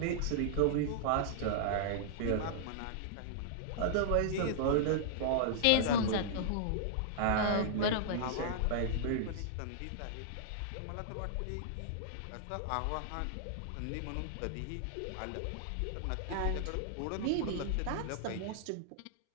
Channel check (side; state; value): both; different; correlation -0.01